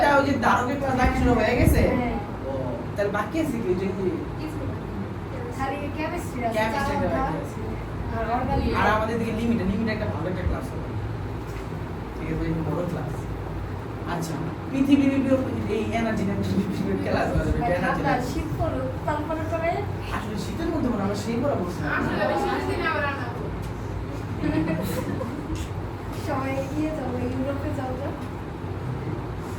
ওই যে ধারকের ক্লাস দেখা শুরু হয়ে গেছে। ও তাহলে বাকি আছে কি ওই যে খালি কেমিস্ট্রি আছে Chemistry টা বাকি আছে। আর অর্গানিক আর আমাদের দিকে লিমিট একটা ভালো একটা ক্লাস হবে। ঠিক আছে এই বড় ক্লাস। আচ্ছা পৃথিবীর এই এনার্জি ক্লাস হবে এনার্জি। ঠান্ডা শীত পড়লো তারপরে করে আসলে শীতের মধ্যে মনে হয় আমরা সেই পড়া বলছি সবাই গিয়ে যাবো ইউরোপে যাও তো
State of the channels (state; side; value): identical; both; correlation 1.00